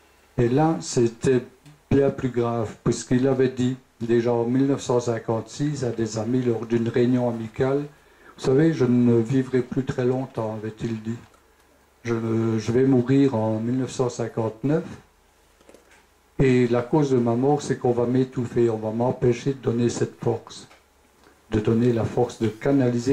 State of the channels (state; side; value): identical; both; correlation 1.00